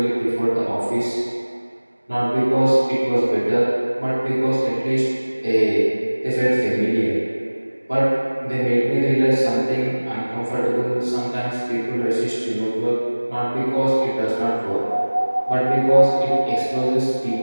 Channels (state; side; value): inverted; both; correlation -1.00